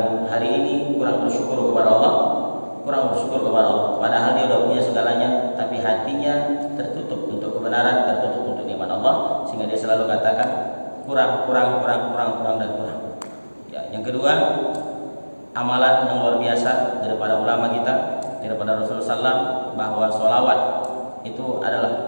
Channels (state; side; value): inverted; both; correlation -1.00